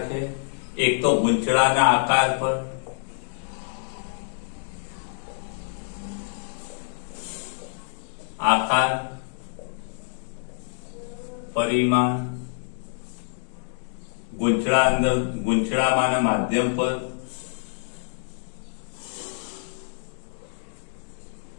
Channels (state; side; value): silent; right; digital silence